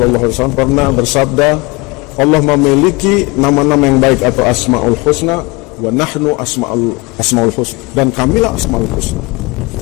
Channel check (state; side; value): quieter; right; 25.4 dB